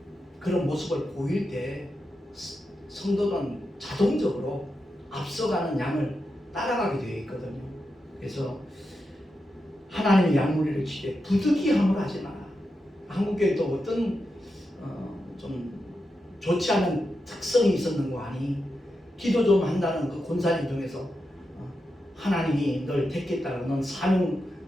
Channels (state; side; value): normal; both; correlation 0.88